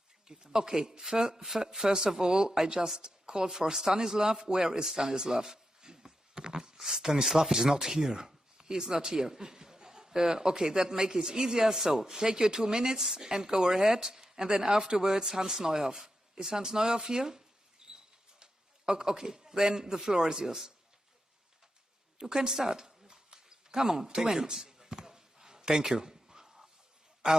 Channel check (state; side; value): normal; both; correlation 0.87